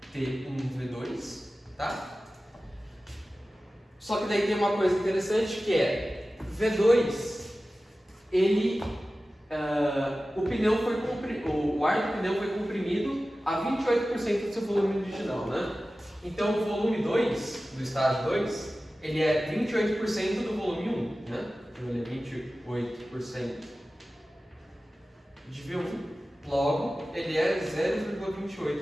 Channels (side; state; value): both; normal; correlation 0.95